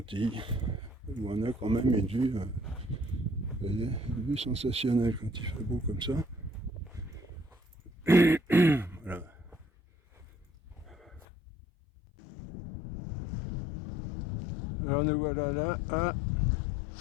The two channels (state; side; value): drops out; right; at 11.2 s